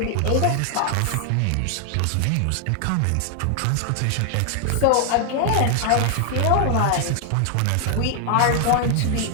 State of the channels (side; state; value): both; different; correlation 0.00